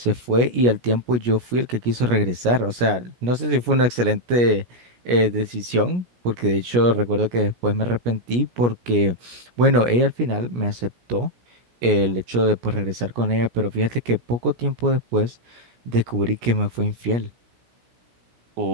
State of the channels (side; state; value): left; late; 17 ms